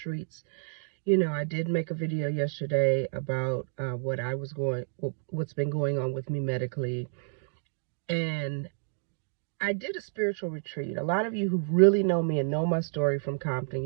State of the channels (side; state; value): left; silent; digital silence